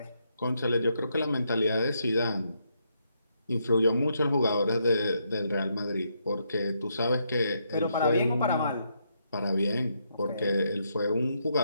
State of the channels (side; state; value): both; inverted; correlation -0.78